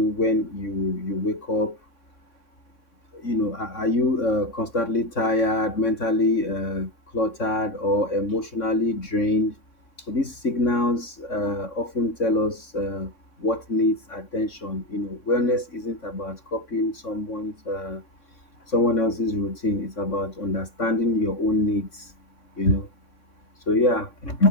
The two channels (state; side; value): late; right; 3.6 ms